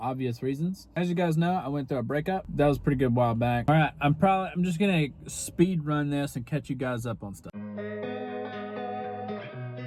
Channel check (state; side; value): identical; both; correlation 1.00